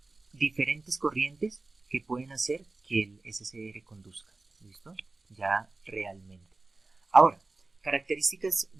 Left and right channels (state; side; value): quieter; left; 3.4 dB